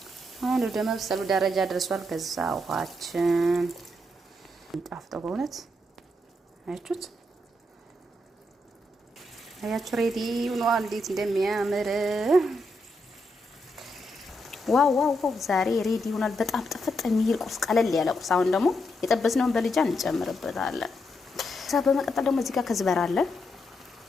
አሁን ወደ መብሰሉ ደረጃ ደርሷል። ከዛ ውሃችን ጣፍጦ በእውነት አያችሁ ሬዲ ሆኗል። እንዴት እንደሚያምር ዋው ዋው ዋው! ዛሬ ሬዲ ሆኗል። በጣም ጥፍጥ የሚል ቁርስ፣ ቀለል ያለ ቁርስ። አሁን ደግሞ የጠበስነውን በልጃን እንጨምርበታለን። ከዛ በመቀጠል ደግሞ እዚህ ጋር ከዝበራ አለ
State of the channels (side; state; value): both; normal; correlation 0.81